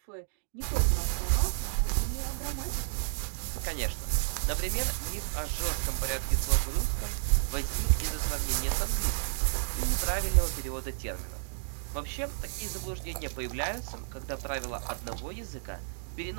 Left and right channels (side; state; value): left; silent; digital silence